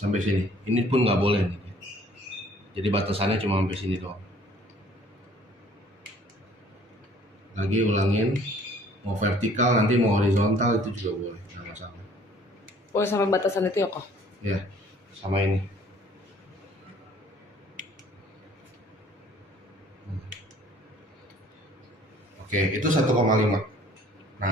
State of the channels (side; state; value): both; normal; correlation 0.56